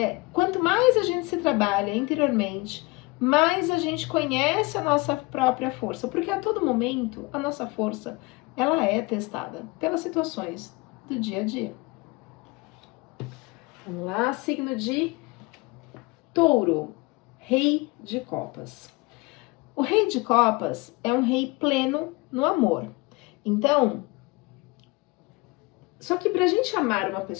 quanto mais a gente se trabalha interiormente, mais a gente conhece a nossa própria força, porque a todo momento a nossa força ela é testada pelas situações do dia a dia. Vamos lá, signo de Touro, Rei de Copas. O Rei de Copas é um rei pleno no amor. Então, só que para a gente amar uma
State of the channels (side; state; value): right; quieter; 25.1 dB